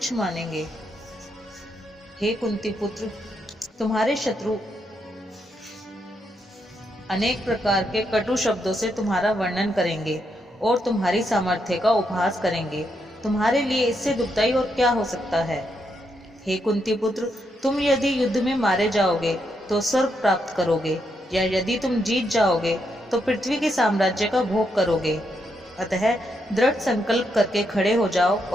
मानेंगे। हे कुंती पुत्र, तुम्हारे शत्रु अनेक प्रकार के कटु शब्दों से तुम्हारा वर्णन करेंगे और तुम्हारी सामर्थ्य का उपहास करेंगे। तुम्हारे लिए इससे दुखदाई और क्या हो सकता है। हे कुंती पुत्र, तुम यदि युद्ध में मारे जाओगे तो स्वर्ग प्राप्त करोगे, या यदि तुम जीत जाओगे तो पृथ्वी के साम्राज्य का भोग करोगे। अतः दृढ़ संकल्प करके खड़े हो जाओ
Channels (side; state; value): both; normal; correlation 0.80